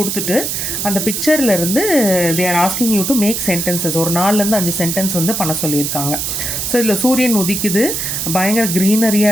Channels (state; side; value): noise; right; hiss, 2 dB below the sound